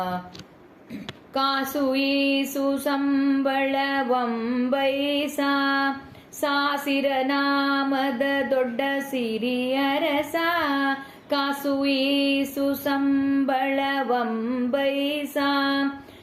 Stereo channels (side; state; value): both; identical; correlation 1.00